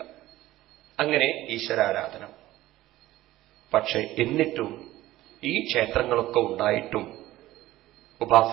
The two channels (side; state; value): left; quieter; 16.1 dB